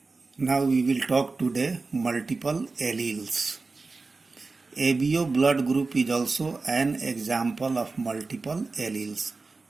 Now we will talk today multiple alleles. ABO blood group is also an example of multiple alleles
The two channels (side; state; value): left; quieter; 3.9 dB